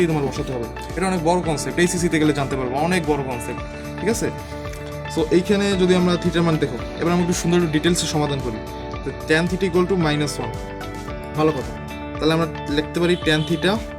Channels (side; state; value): both; identical; correlation 1.00